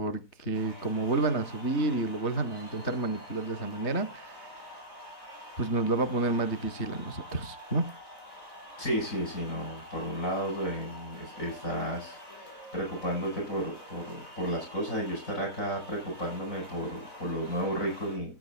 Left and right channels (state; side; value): late; right; 4.0 ms